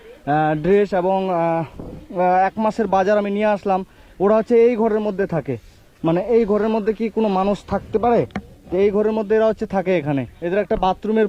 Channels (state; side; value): identical; both; correlation 1.00